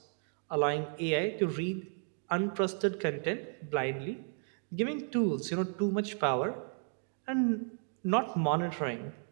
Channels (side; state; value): left; silent; 55 dB below the other